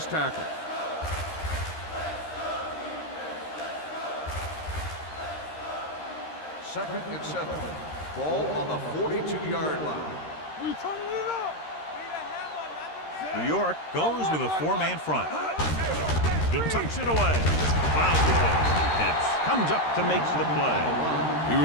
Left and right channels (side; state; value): right; late; 13 ms